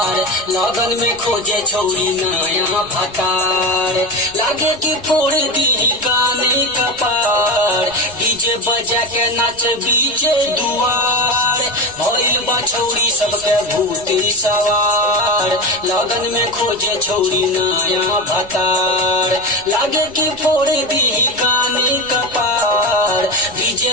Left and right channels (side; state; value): right; noise; rumble, 22 dB below the sound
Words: लगन में खोजे छौरी नया भतार। लागे कि फोड़ दी काने कपार, डीजे बजा के नाच बीचे दुआर। भइल बा छौरी सबके भूती सवार, लगन में खोजे छौरी नया भतार। लागे कि फोड़ दी काने कपार,